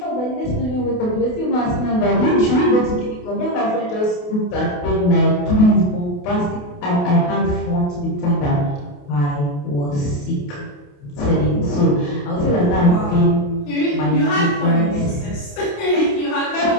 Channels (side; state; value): right; late; 28 ms